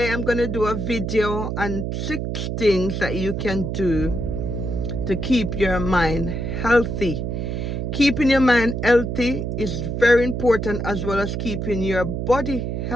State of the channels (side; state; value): right; noise; hum, 3 dB below the sound